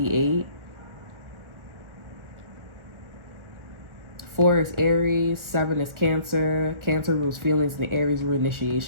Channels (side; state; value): left; late; 1.4 ms